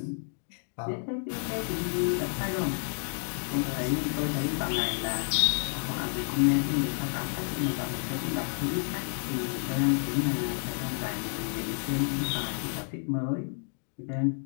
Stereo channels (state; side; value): silent; right; digital silence